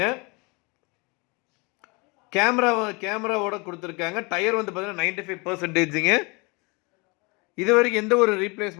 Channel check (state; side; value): quieter; right; 28.5 dB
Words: கேமராவோட கொடுத்துருக்காங்க. டயர் வந்து பார்த்தீங்கன்னா 95%ங்க. இது வரைக்கும் எந்த ஒரு